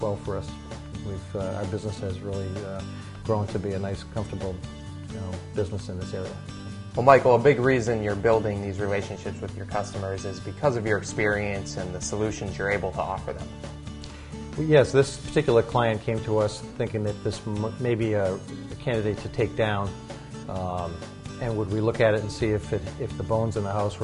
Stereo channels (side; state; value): both; identical; correlation 1.00